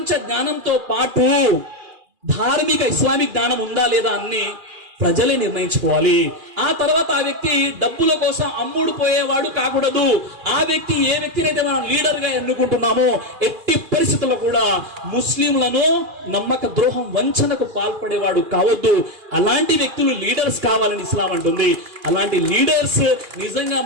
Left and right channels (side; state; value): left; late; 2.4 ms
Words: జ్ఞానంతో పాటు ధార్మిక ఇస్లామిక్ జ్ఞానం ఉందా లేదా అని ప్రజలే నిర్ణయించుకోవాలి. ఆ తర్వాత ఆ వ్యక్తి డబ్బుల కోసం అమ్ముడు పోయేవాడు కాకూడదు. ఆ వ్యక్తి ఏ వ్యక్తినైతే మనం లీడర్ గా ఎన్నుకుంటున్నామో ఎట్టి పరిస్థితుల్లో కూడా ముస్లింలను నమ్మక ద్రోహం, వంచనకు పాల్పడేవాడు కావద్దు. అలాంటి వ్యక్తులు లీడర్స్ కావాలని ఇస్లాం అంటుంది. అలాంటి లీడర్స్ నిజంగా